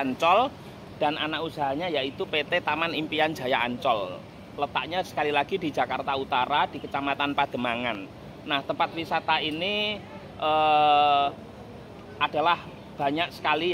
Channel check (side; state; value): both; identical; correlation 1.00